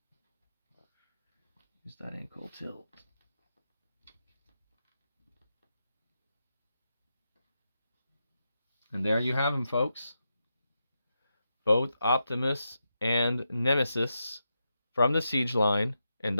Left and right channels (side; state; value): both; inverted; correlation -0.87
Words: Use that ankle tilt. And there you have them, folks. Both Optimus and Nemesis from the Siege line. And